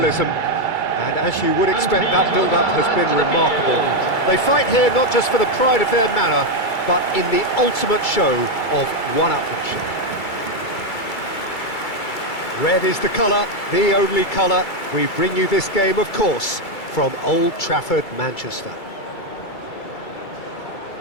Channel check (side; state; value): right; late; 2.3 ms